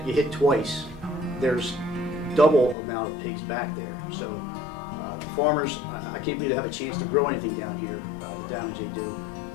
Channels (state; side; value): drops out; right; at 2.8 s